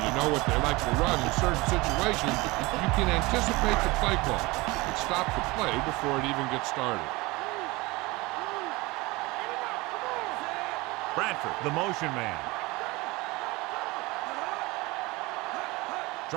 you know what they like to run in certain situations, you can anticipate the play call and stop the play before it even gets started. Bradford, the motion man.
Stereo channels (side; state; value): left; quieter; 22.9 dB